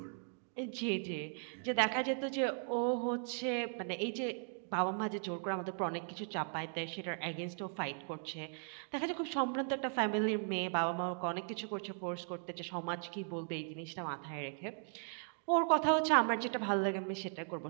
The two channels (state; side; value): silent; left; 53 dB below the other